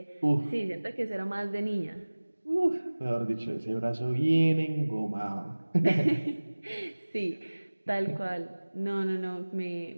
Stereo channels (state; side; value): inverted; both; correlation -1.00